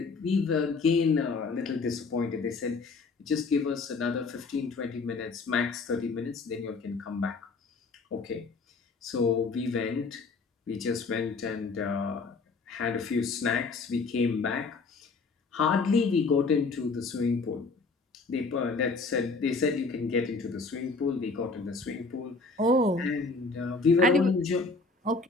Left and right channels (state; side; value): quieter; right; 4.1 dB